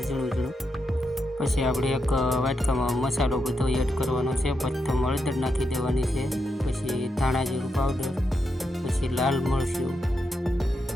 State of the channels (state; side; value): normal; both; correlation 0.84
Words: ઝીણું ઝીણું। પછી આપણે એક વાટકામાં મસાલો બધો એડ કરવાનો છે। પ્રથમ હળદર નાખી દેવાની છે, પછી ધાણા જીરું પાવડર, પછી લાલ મરચું